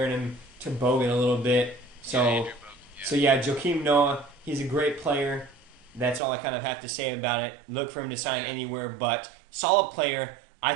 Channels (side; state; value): left; drops out; at 6.2 s